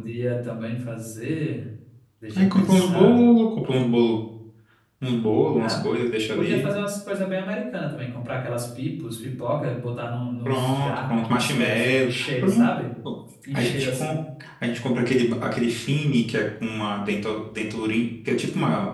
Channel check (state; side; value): identical; both; correlation 1.00